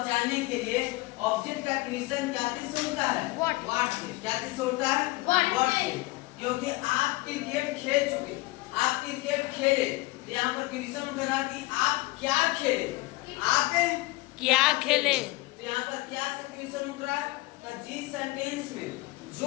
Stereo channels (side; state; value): right; quieter; 21.1 dB